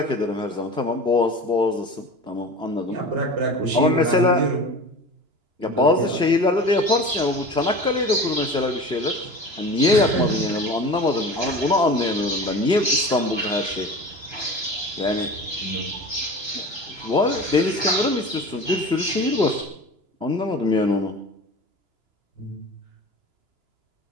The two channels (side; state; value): left; late; 2.9 ms